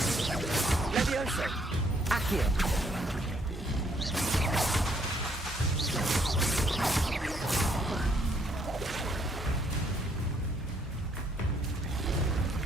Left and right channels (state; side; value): normal; both; correlation 0.68